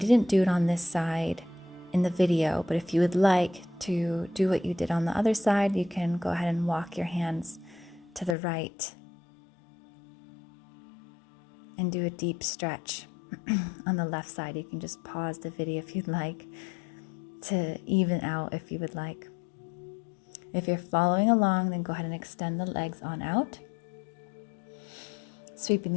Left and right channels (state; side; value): drops out; right; at 8.3 s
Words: do it on this side in the video, but if you would like to do what you did on the other side, you can go ahead and walk your hands to the right and do a deep stretch on the left side. You can just pause the video if you'd like to even out if you would like. If you're following along, then go ahead and extend the legs on out. Sweeping